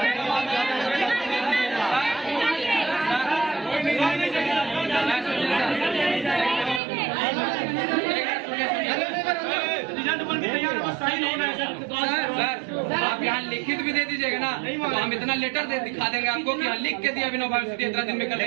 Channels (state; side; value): drops out; left; at 6.8 s